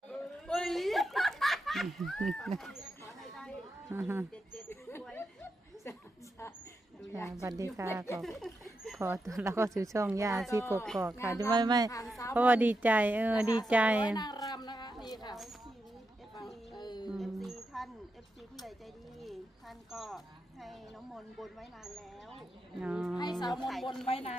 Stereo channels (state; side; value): normal; both; correlation 0.86